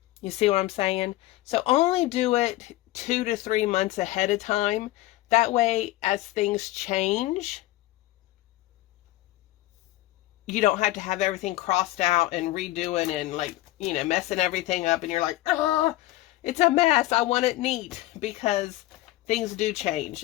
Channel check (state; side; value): quieter; right; 16.9 dB